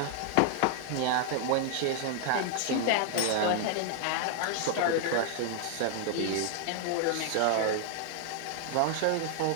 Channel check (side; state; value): both; different; correlation 0.00